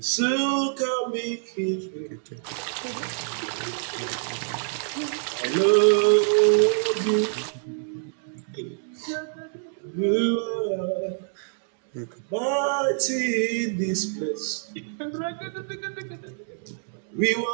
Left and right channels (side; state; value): left; silent; digital silence